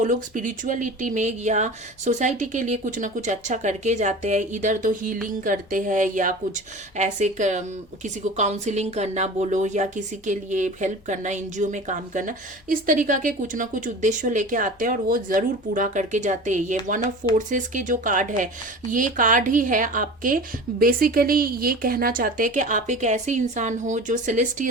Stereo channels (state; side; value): noise; left; hum, 29 dB below the sound